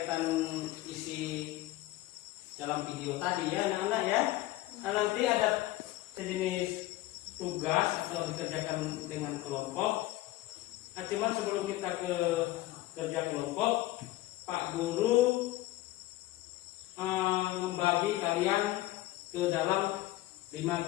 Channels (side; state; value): right; quieter; 17.0 dB